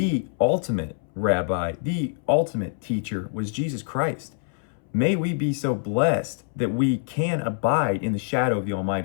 ultimate rabbi, the ultimate teacher was Jesus Christ. May we be so blessed that we can abide in the shadow of the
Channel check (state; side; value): silent; right; 62 dB below the other